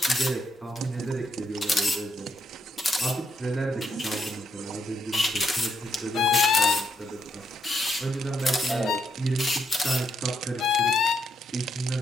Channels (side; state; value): both; normal; correlation 0.77